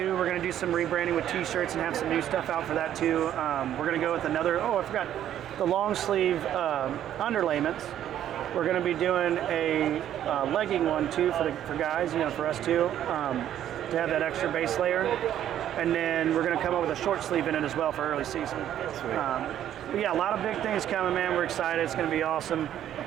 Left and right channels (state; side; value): quieter; left; 11.1 dB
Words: We're going to do some rebranding with T-shirts and have some new stuff out for that too. We're going to go with another. Oh, I forgot. the long sleeve underlayments. We're going to be doing a legging one too for guys, for us too, to have that extra base layer. And then we're going to come up with a short sleeve in it as well for early season. But yeah, a lot of big things coming, man. We're excited. It's going to be awesome.